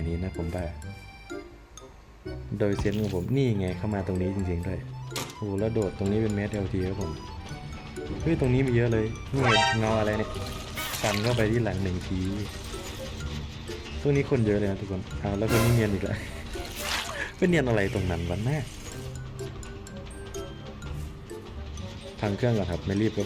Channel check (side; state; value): both; identical; correlation 1.00